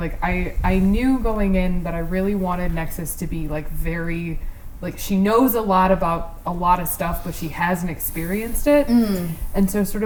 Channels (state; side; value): identical; both; correlation 1.00